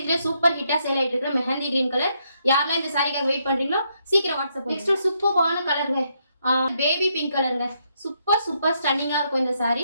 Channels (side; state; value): both; inverted; correlation -0.76